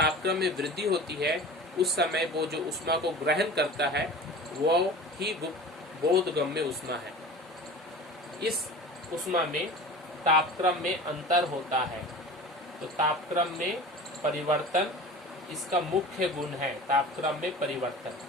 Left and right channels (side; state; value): both; normal; correlation 0.37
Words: में वृद्धि होती है उस समय वो जो उष्मा को ग्रहण करता है वो ही बोधगम्य उष्मा है। इस उष्मा में तापक्रम में अंतर होता है, तो तापक्रम में परिवर्तन इसका मुख्य गुण है, तापक्रम में परिवर्तन।